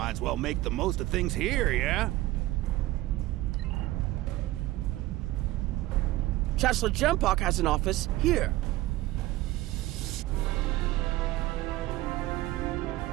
as well make the most of things here, yeah? Chancellor Jempok has an office here.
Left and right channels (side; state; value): left; quieter; 17.2 dB